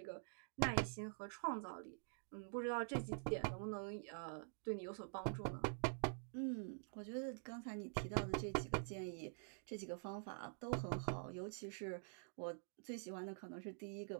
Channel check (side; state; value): left; silent; digital silence